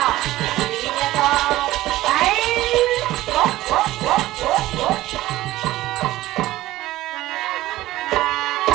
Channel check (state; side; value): quieter; left; 16.3 dB